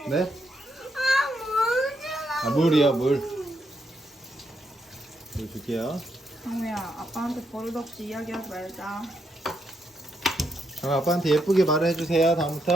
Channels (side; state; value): both; normal; correlation 0.79